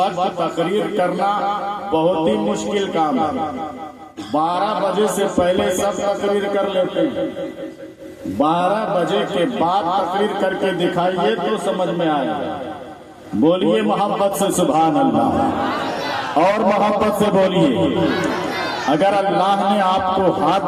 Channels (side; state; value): both; identical; correlation 1.00